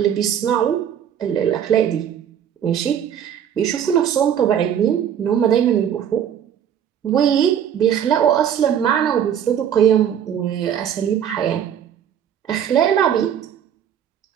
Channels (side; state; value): left; quieter; 9.1 dB